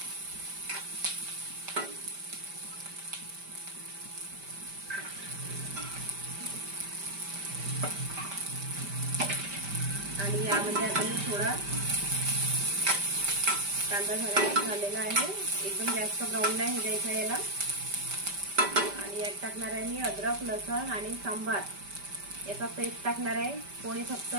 आणि यामध्ये आता मी थोडा कांदा झालेला आहे, एकदम जास्त ब्राऊन नाही द्यायचा याला। आणि यात टाकणार आहे मी अद्रक, लसूण आणि सांबार याचा पेस्ट टाकणार आहे। कोणी फक्त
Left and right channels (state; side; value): late; left; 5.1 ms